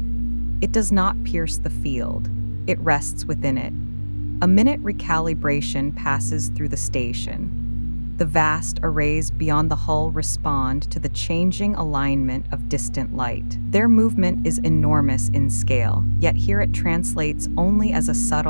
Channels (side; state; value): both; inverted; correlation -1.00